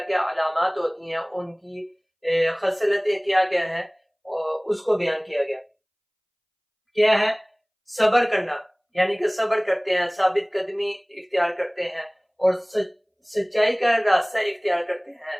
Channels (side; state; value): both; identical; correlation 1.00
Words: کیا علامات ہوتی ہیں، ان کی خصلتیں کیا کیا ہیں، اس کو بیان کیا گیا۔ کیا ہے؟ صبر کرنا، یعنی کہ صبر کرتے ہیں، ثابت قدمی اختیار کرتے ہیں، اور سچائی کا راستہ اختیار کرتے ہیں،